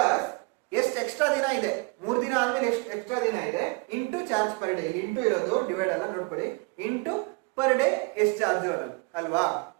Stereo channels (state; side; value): quieter; left; 29.4 dB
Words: ಎಷ್ಟು ಎಕ್ಸ್ಟ್ರಾ ದಿನ ಇದೆ, 3 ದಿನ ಆದ್ಮೇಲೆ ಎಷ್ಟು ಎಕ್ಸ್ಟ್ರಾ ದಿನ ಇದೆ, into charge per day. Into ಇರೋದು ಡಿವೈಡ್ ಅಲ್ಲ, ನೋಡ್ಕೊಳ್ಳಿ, ಇಂಟು ಪರ್ ಡೇ ಎಷ್ಟು ಚಾರ್ಜ್ ಅಲ್ವಾ?